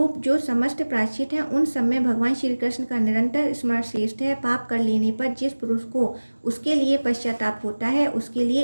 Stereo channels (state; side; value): inverted; both; correlation -1.00